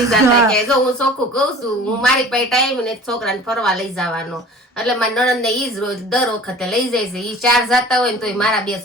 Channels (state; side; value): normal; both; correlation 0.44